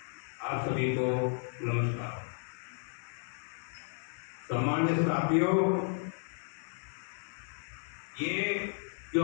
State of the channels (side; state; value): right; silent; 55 dB below the other